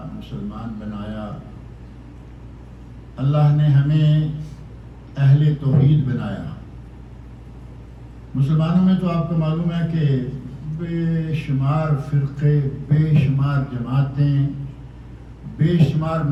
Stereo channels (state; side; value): identical; both; correlation 1.00